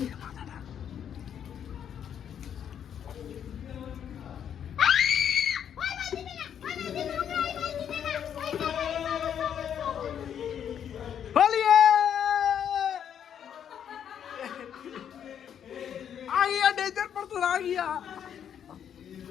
होलिए आ गया डेजर्ट पर तो आ गया।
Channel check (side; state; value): right; quieter; 8.9 dB